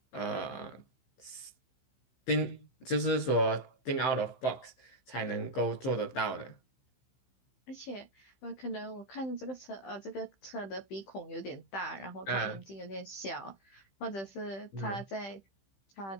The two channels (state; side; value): late; right; 15 ms